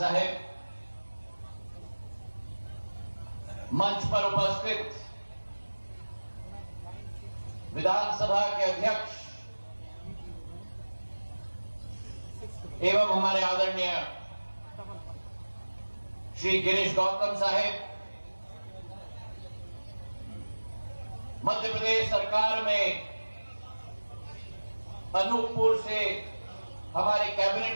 मंच पर उपस्थित विधानसभा के अध्यक्ष एवं हमारे आदरणीय श्री गिरीश गौतम साहेब, मध्य प्रदेश सरकार में अनूपपुर से हमारे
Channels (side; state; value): both; inverted; correlation -1.00